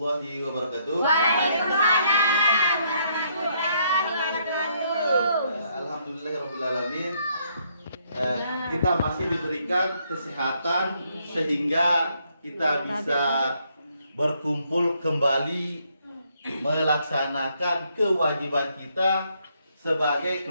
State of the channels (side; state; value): both; inverted; correlation -0.72